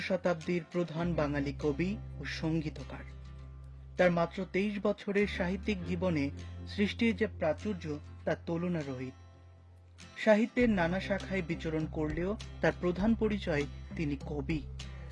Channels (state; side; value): identical; both; correlation 1.00